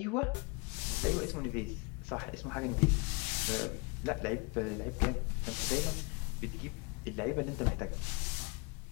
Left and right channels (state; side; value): quieter; right; 29.6 dB